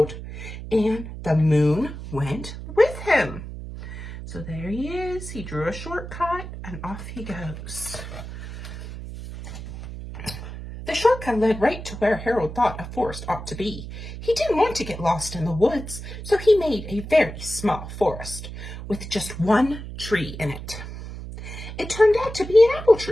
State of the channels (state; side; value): noise; right; hum, 10 dB below the sound